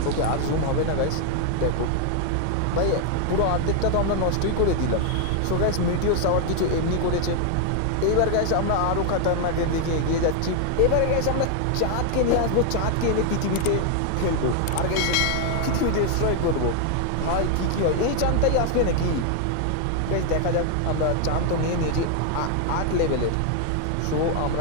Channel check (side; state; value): both; different; correlation 0.00